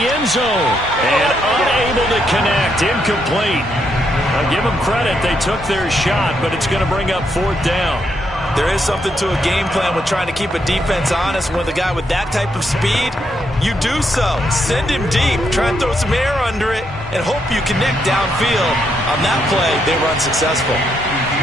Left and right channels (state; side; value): normal; both; correlation 0.78